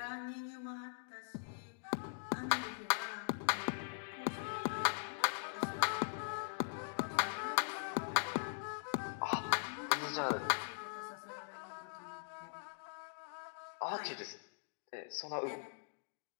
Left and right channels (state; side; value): silent; right; digital silence